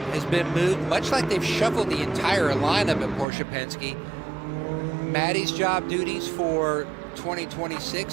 has been moved, much like they've shuffled the entire lineup at Porsche Penske. Maddie's job duties for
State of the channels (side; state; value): left; drops out; at 3.2 s